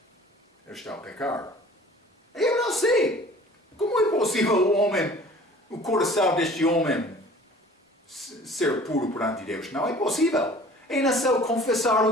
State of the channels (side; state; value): both; normal; correlation 0.48